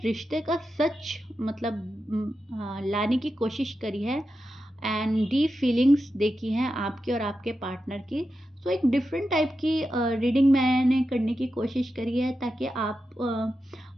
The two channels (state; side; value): normal; both; correlation 0.90